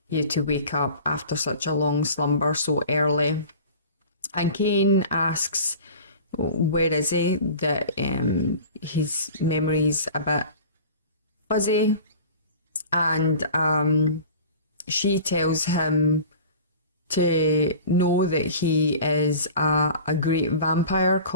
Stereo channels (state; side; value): inverted; both; correlation -0.40